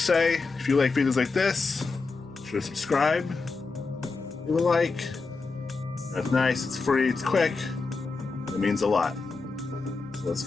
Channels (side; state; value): right; quieter; 4.2 dB